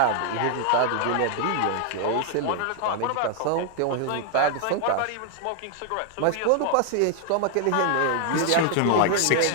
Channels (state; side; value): different; both; correlation 0.00